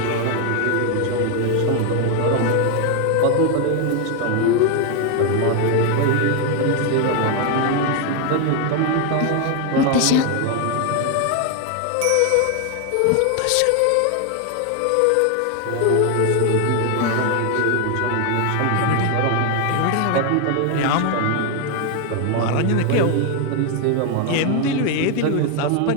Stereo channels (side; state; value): both; different; correlation 0.01